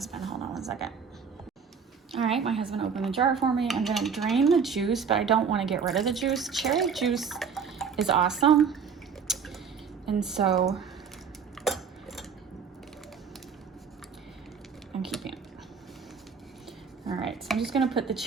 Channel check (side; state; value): left; quieter; 6.2 dB